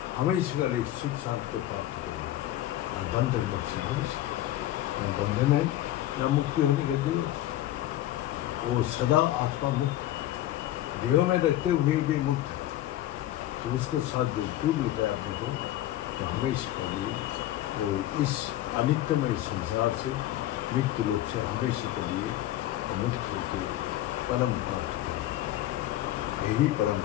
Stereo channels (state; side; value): quieter; right; 13.9 dB